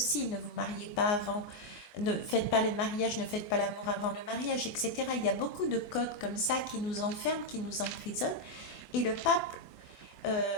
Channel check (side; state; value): right; late; 24 ms